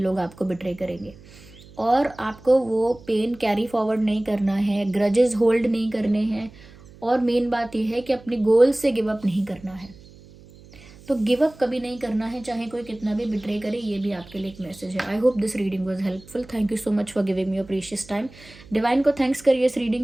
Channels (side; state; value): right; noise; hum, 22 dB below the sound